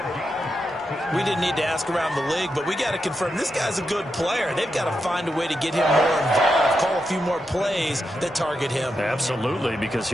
We didn't need to ask around the league, but we got to confirm this guy's a good player. They've got to find a way to get him more involved, call a few more plays that target him. Absolutely, because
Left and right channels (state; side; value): normal; both; correlation 0.86